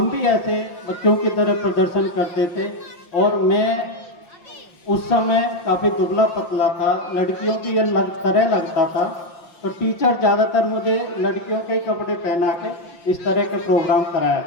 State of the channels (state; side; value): late; right; 5.8 ms